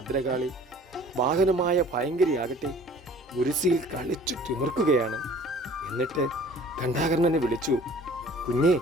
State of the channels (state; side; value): normal; both; correlation 0.49